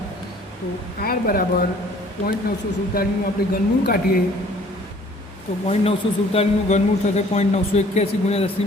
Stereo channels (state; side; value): normal; both; correlation 0.55